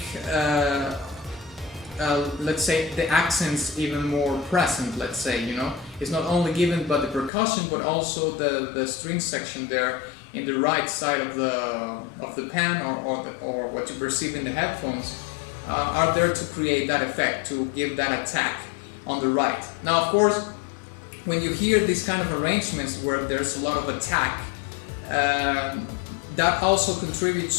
let's say the accents even more present, let's say, you know. It's not only given by the percussion, but also the string section there in the right side of the pan, or what you perceive in the headphones, are there to create that effect, to give that attack on the right. Now, of course, when you hear these kind of arrangements where there's a lot of attack, that also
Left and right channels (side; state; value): right; drops out; at 7.3 s